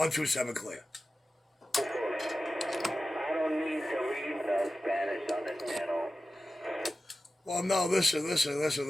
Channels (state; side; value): normal; both; correlation 0.94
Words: clear. I don't need to read the Spanish on the channel. Well, no, listen. You